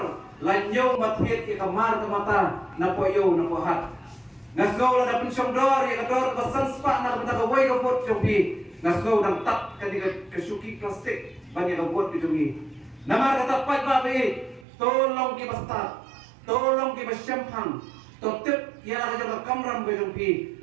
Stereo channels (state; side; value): drops out; left; at 14.7 s